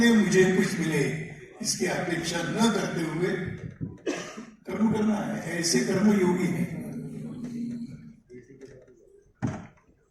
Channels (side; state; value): both; identical; correlation 1.00